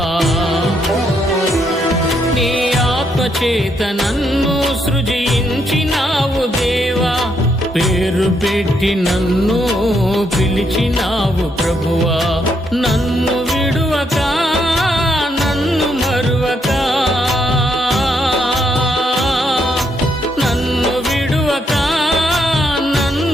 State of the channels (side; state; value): both; normal; correlation 0.76